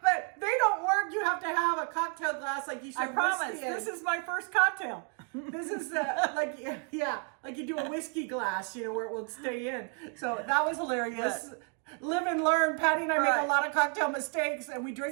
But they don't work. You have to have a cocktail glass like you should. I promise. This is my first cocktail. This is like you do a whiskey glass, you know, where it will stay in. So that was hilarious. Live and learn. Patti and I make a lot of cocktail mistakes, and we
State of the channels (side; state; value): left; quieter; 38.7 dB